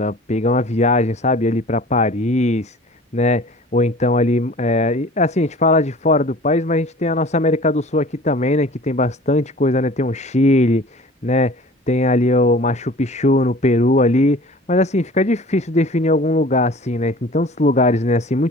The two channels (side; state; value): both; normal; correlation 0.44